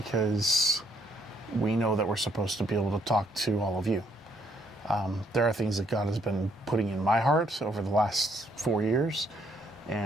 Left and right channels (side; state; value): both; normal; correlation 0.69